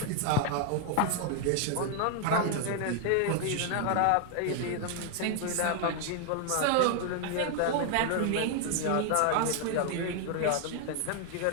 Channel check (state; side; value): different; both; correlation 0.00